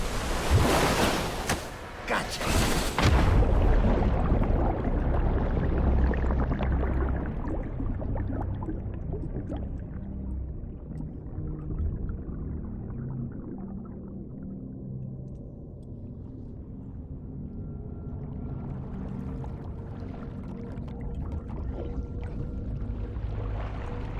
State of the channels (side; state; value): both; identical; correlation 1.00